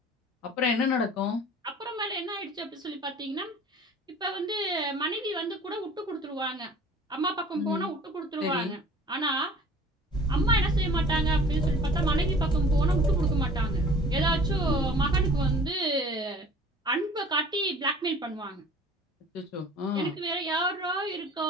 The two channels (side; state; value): both; normal; correlation 0.47